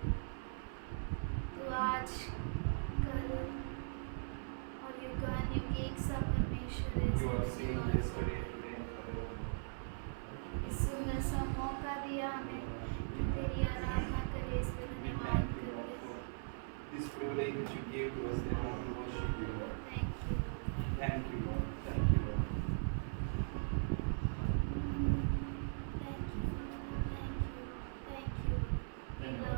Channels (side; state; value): left; silent; 51 dB below the other